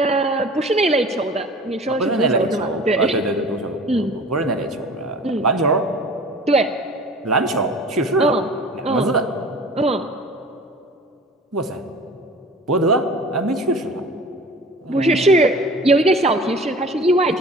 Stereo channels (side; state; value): both; normal; correlation 0.42